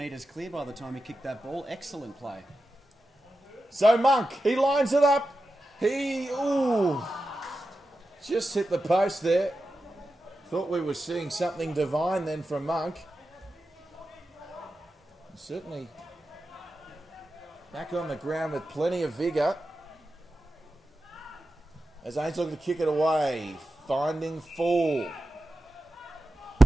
clear by the time he kicked that ball. Excellent play. So Monk, he lines it up. Just hit the post there. Thought we were seeing something divine then from Monk. Certainly back on the ground with plenty of vigour. As Ainslie looking to kick it away. Finding Fall.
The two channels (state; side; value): normal; both; correlation 0.91